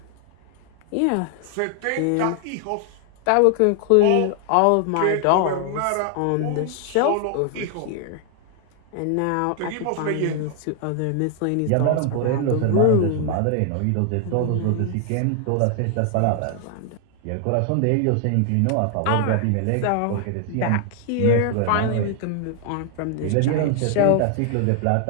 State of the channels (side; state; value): both; different; correlation 0.00